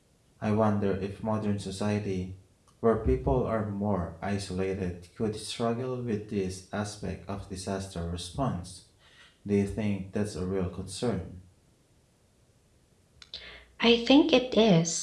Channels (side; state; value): both; identical; correlation 1.00